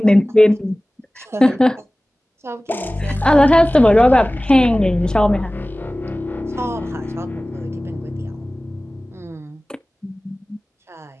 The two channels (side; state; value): both; normal; correlation 0.98